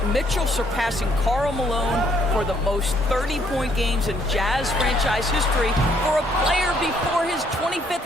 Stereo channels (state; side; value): normal; both; correlation 0.67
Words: Mitchell surpassing Karl Malone for the most 30-point games in Jazz franchise history for a player before his